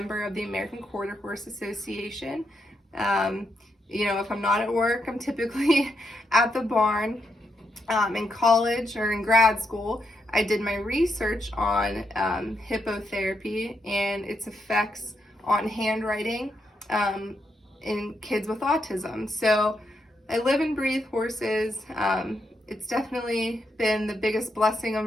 of the American Quarter Horse Association. If I'm not at work, I'm typically at the barn. In college or in grad school, I did my research on hippotherapy and its effects on handwriting in kids with autism. So I live and breathe horses. It's definitely been the biggest blessing of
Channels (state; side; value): normal; both; correlation 0.81